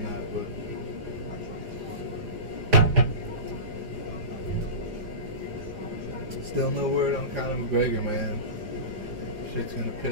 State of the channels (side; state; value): left; late; 4.9 ms